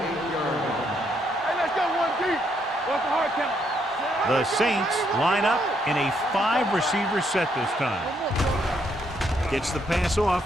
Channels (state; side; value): normal; both; correlation 0.74